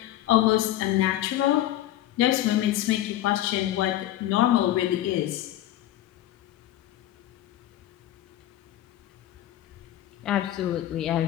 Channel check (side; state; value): right; quieter; 13.7 dB